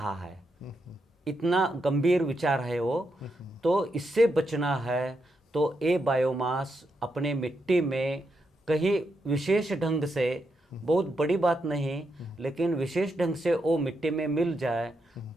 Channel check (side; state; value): both; normal; correlation 0.83